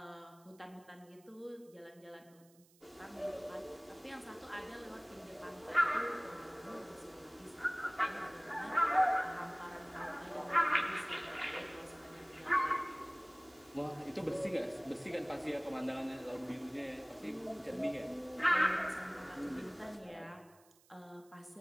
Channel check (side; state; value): right; noise; hiss, 28 dB below the sound